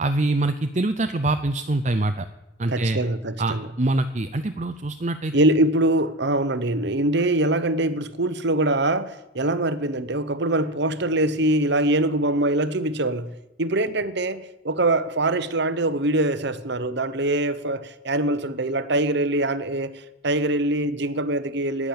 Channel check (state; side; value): normal; both; correlation 0.17